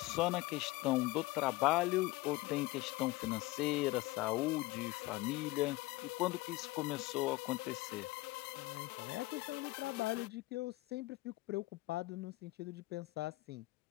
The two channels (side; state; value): right; quieter; 20.0 dB